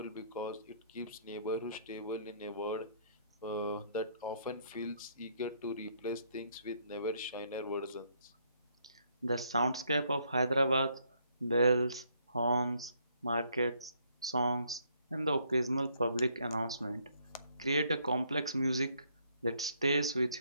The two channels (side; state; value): both; inverted; correlation -0.69